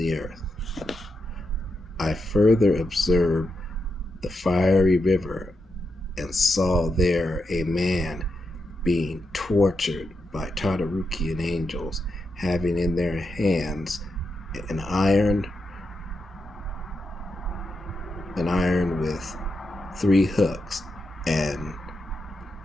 earth." I further observed the fiery river, and saw there a man being tortured by Tartarukian angels, having in their hands an iron with 3 hooks, and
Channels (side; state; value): both; normal; correlation 0.85